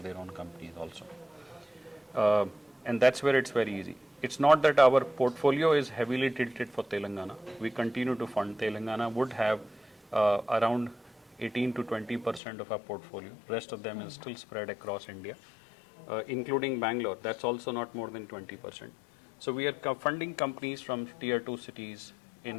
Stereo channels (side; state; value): right; drops out; at 12.4 s